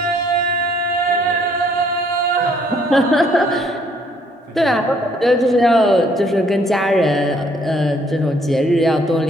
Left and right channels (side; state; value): both; normal; correlation 0.65